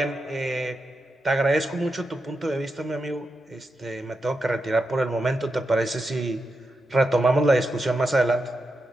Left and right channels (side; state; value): both; normal; correlation 0.87